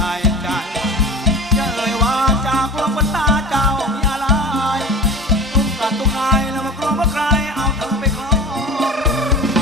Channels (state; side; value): normal; both; correlation 0.34